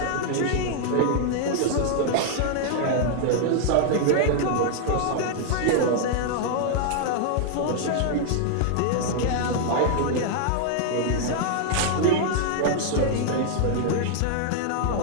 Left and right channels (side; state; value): both; different; correlation 0.00